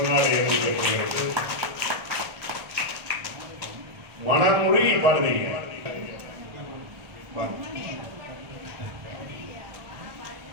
அணிவிக்கப்படுகிறது. மனமுருகி பாடுவீங்க.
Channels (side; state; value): left; late; 1.2 ms